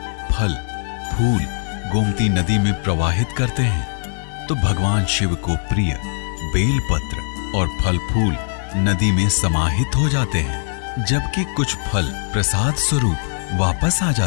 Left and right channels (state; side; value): silent; right; digital silence